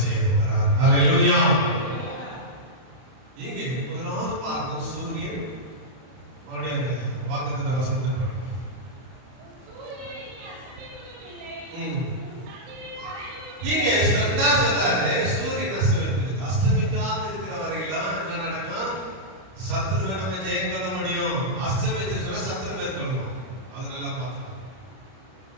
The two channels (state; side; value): late; left; 31 ms